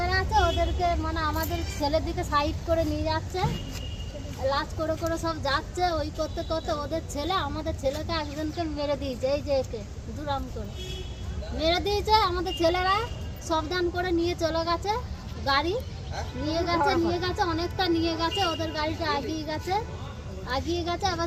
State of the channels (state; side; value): identical; both; correlation 1.00